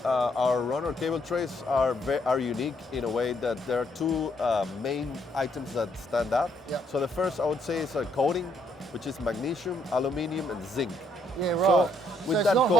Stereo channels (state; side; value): normal; both; correlation 0.71